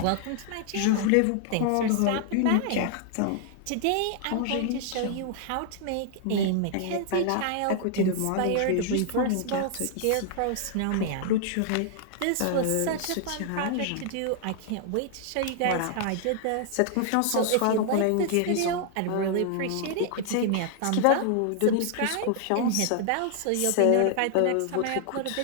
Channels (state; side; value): different; both; correlation 0.00